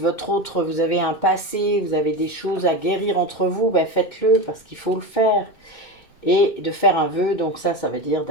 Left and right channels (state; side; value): late; right; 2.2 ms